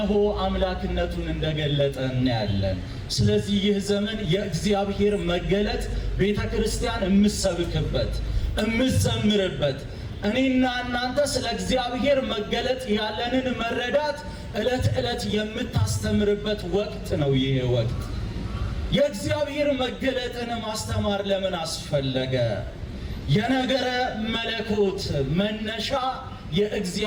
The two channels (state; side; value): identical; both; correlation 1.00